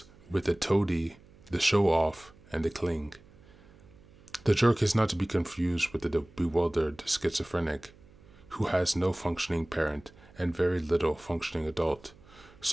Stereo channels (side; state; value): right; noise; hum, 25 dB below the sound